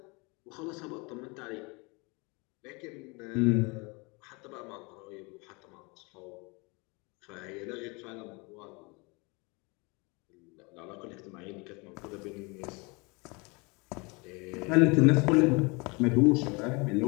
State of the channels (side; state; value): right; quieter; 28.6 dB